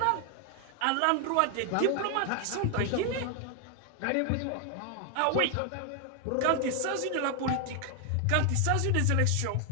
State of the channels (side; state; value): both; different; correlation 0.00